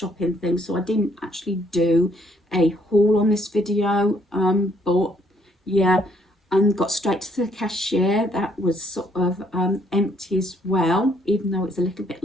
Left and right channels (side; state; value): both; normal; correlation 0.67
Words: things. So I didn't actually do a haul on this video, but yeah, and got straight to the cashier. That was sort of empty as well, even though it's a little bit